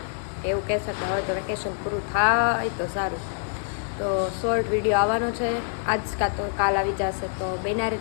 કે એવું કહેશે કે હવે તો વેકેશન પૂરું થાય તો સારું. તો શોર્ટ વિડીયો આવવાનો છે આજ કાં તો કાલ આવી જશે, તો બન્યા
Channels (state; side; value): silent; right; digital silence